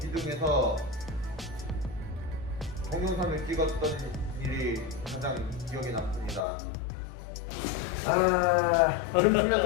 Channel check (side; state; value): right; drops out; at 6.5 s